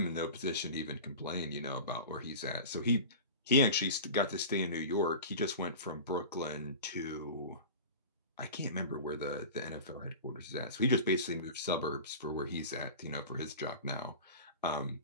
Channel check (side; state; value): both; inverted; correlation -0.33